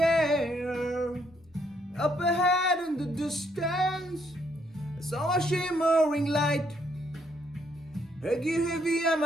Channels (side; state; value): both; normal; correlation 0.72